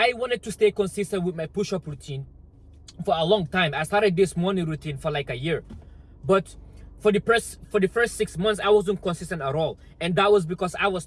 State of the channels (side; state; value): both; identical; correlation 1.00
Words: wanted to stay consistent with my push-up routine for a long time. I started this morning routine for like a year, but for the first 6 months I wasn't consistent at all, and that was because I was